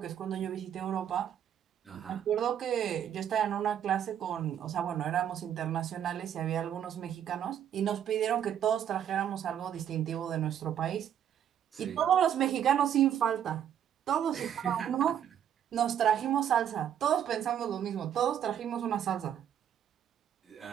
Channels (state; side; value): quieter; left; 9.6 dB